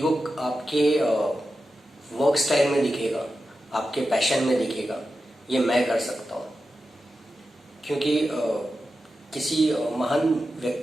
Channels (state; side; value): normal; both; correlation 0.91